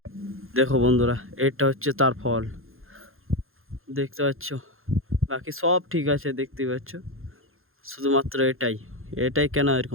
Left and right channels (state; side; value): late; left; 0.61 ms